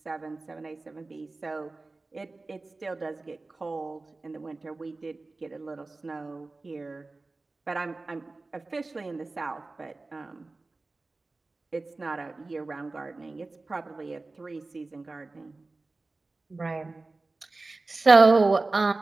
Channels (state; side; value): quieter; left; 3.4 dB